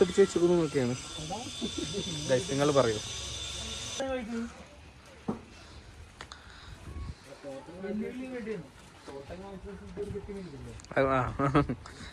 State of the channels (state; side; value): identical; both; correlation 1.00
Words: അടിച്ച് വെച്ചിരിക്കുന്നൊക്കെയാണ്. നിങ്ങൾ പറയൂ.